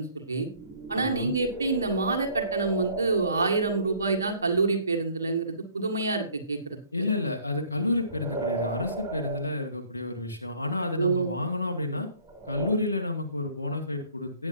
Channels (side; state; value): both; inverted; correlation -0.56